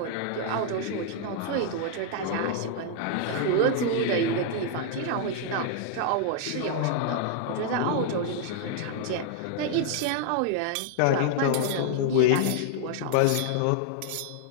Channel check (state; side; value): different; both; correlation -0.01